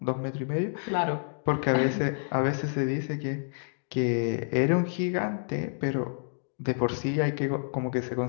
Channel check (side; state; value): right; silent; digital silence